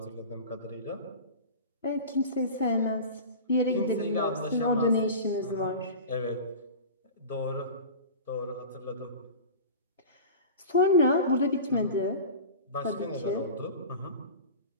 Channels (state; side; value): inverted; both; correlation -0.33